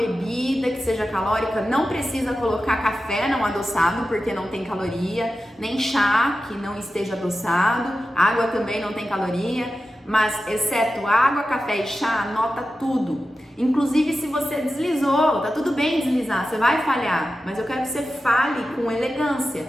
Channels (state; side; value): normal; both; correlation 0.92